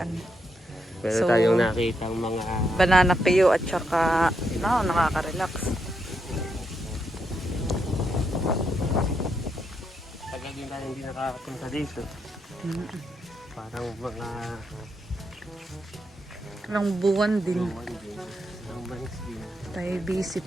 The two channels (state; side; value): normal; both; correlation 0.81